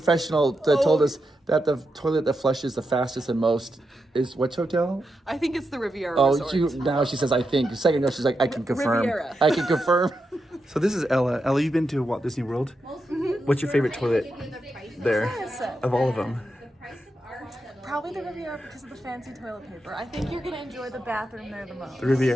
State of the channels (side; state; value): both; normal; correlation 0.86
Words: that told us that the toilet that flushes the fastest and most is which hotel? I think it's the Riviera Resort. Now she says I think. A second ago she's like I can confirm. Riviera. I can confirm. So this is Ella. Ella, you've been to Walt Disney World. What's your favorite toilet there of all of them? Probably the Riviera because of the fancy toilet paper. I think you're going to enjoy the bathroom there the most. The